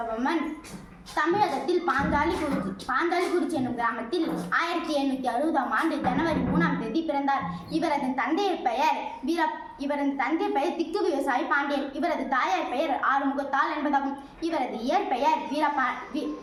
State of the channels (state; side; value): identical; both; correlation 1.00